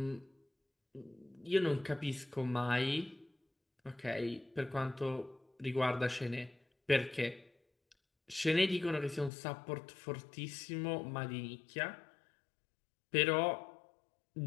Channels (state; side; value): drops out; right; at 9.3 s